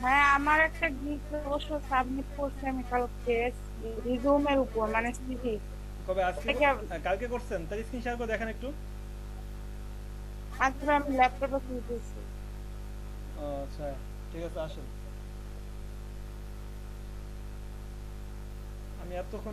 হ্যাঁ আমার একটা গিগ অবশ্য সাবমিট করছি আমি কালকে রিজুমের উপর, মানে সিভি। কবে? আজকে? কালকে করছেন? তার স্ক্রিন শেয়ার করে দেখেন একটু। আজকে আমি ল্যাপটপে খুলতেছি। আচ্ছা ঠিক আছে, আসেন। আমি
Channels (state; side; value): identical; both; correlation 1.00